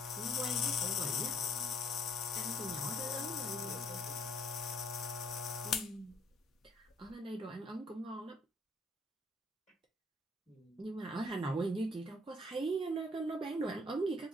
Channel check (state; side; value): normal; both; correlation 0.63